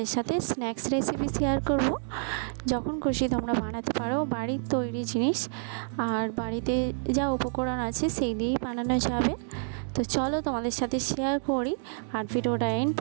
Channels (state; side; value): silent; left; digital silence